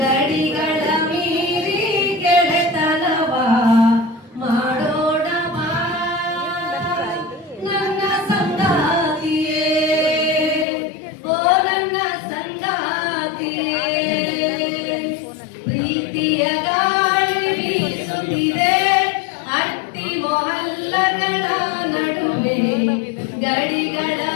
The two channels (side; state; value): right; drops out; at 10.7 s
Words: ಮೀರಿ ಗೆಳೆತನವ ಮಾಡೋಣ ಬಾ ನನ್ನ ಸಂಗಾತಿಯೇ, ಓ ನನ್ನ ಸಂಗಾತಿಯೇ. ಪ್ರೀತಿಯ ಗಾಳಿ ಬೀಸುತ್ತಿದೆ ಅಟ್ಟಿ ಮೊಹಲ್ಲಗಳ ನಡುವೆ ಗಡಿಗಳ